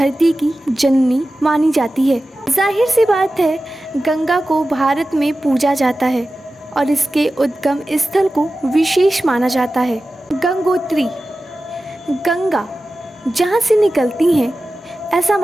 की जननी मानी जाती है। जाहिर सी बात है, गंगा को भारत में पूजा जाता है और इसके उद्गम स्थल को विशेष माना जाता है। गंगोत्री, गंगा जहाँ से निकलती हैं, ऐसा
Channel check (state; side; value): normal; both; correlation 0.94